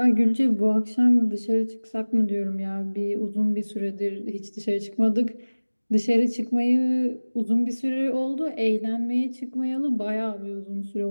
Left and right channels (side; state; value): both; inverted; correlation -1.00